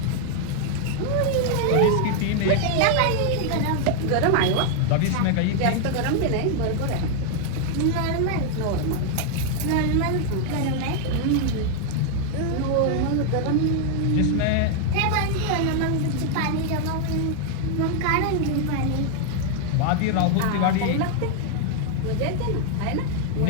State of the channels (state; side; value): different; both; correlation 0.00